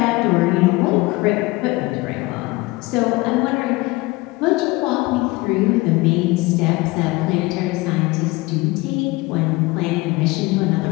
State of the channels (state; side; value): quieter; right; 22.1 dB